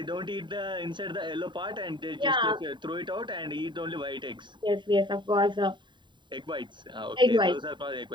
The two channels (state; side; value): late; left; 0.23 ms